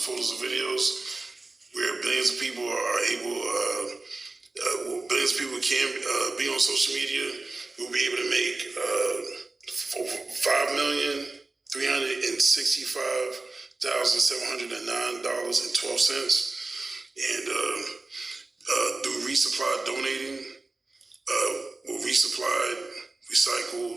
and videos, where billions of people are able, billions of people can be on social media, we'll be able to make $5,365,709.12. And through resupply donating, we'll resupply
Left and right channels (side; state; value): left; quieter; 3.3 dB